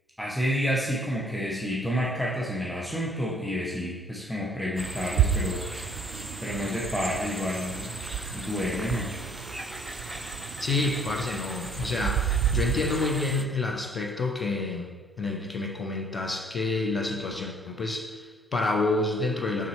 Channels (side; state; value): both; normal; correlation 0.60